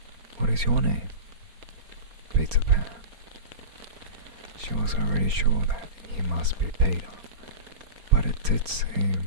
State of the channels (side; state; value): left; late; 4.3 ms